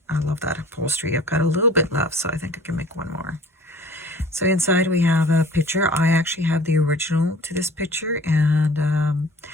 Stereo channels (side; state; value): both; normal; correlation 0.48